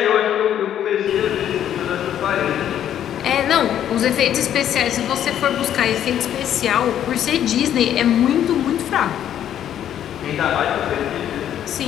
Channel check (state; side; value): quieter; right; 10.4 dB